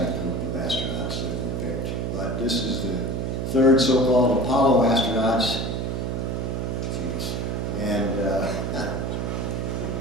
group of astronauts that were picked. But this is the third so-called Apollo astronauts. Jeez. And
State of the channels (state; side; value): noise; right; hum, 1 dB below the sound